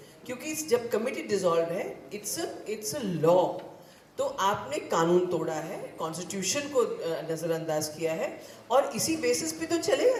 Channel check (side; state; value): both; identical; correlation 1.00